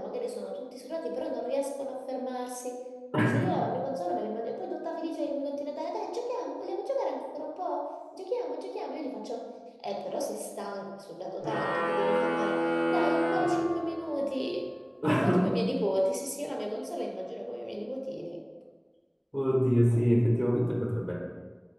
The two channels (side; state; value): both; identical; correlation 1.00